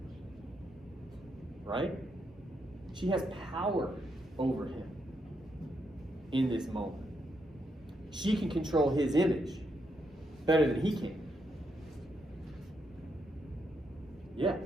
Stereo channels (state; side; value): normal; both; correlation 0.79